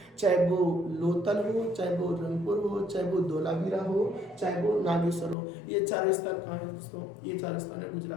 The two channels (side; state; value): right; drops out; at 5.4 s